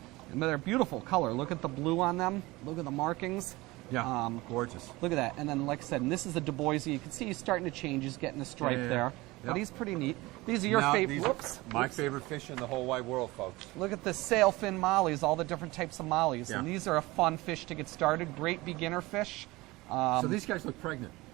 And they're beautiful color. Look at the blue on them. Look at the markings. Yeah, gorgeous. Look at that. And then, like I said, and this is the Dubois. You can see he's starting to change. He's getting a stripe Yeah, yeah, there. yeah. But Yep. he's pretty neat. These are your Now, favorite. these are Whoops. My Whoops. favorite fish in the whole wide world, folks. Look at the sailfin mollies, all the different types of mollies. Yeah. And these are a fun fish to get started. Great beginner fish. So these guys look pregnant.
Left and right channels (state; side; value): quieter; left; 20.9 dB